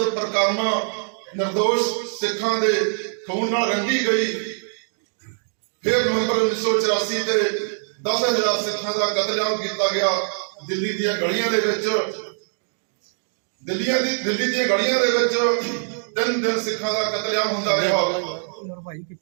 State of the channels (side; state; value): left; silent; digital silence